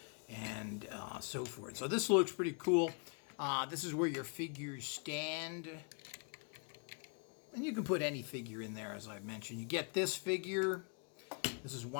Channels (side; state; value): right; quieter; 39.8 dB